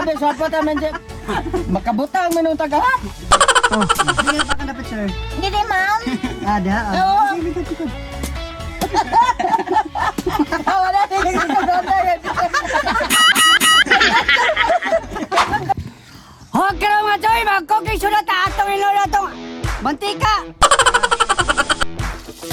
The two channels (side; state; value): both; identical; correlation 1.00